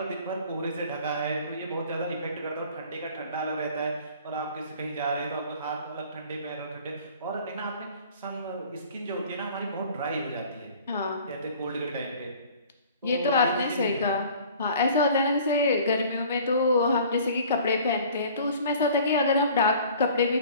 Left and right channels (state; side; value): inverted; both; correlation -0.49